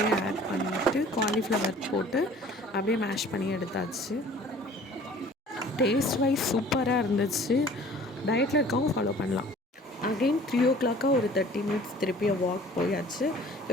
ஆட் பண்ணிவிட்டு காலிஃப்ளவர் போட்டு அப்படியே மேஷ் பண்ணி எடுத்தாச்சு. டேஸ்ட் வைஸ் சூப்பராக இருந்துச்சு. டயட்டில் இருக்கவங்க ஃபாலோ பண்ணலாம். அகெயின் 3 o'clock ஒரு 30 மினிட்ஸ் திருப்பி வாக் போயாச்சு.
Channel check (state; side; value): normal; both; correlation 0.49